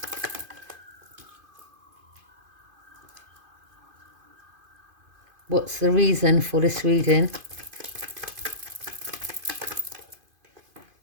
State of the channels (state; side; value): late; left; 2.5 ms